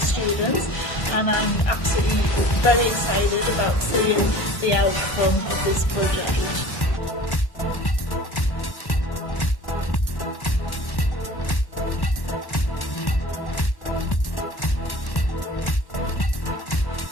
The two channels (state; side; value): late; right; 1.1 ms